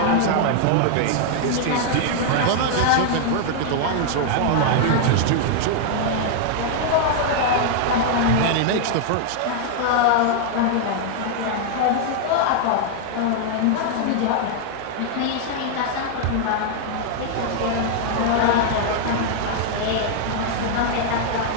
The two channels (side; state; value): both; different; correlation 0.00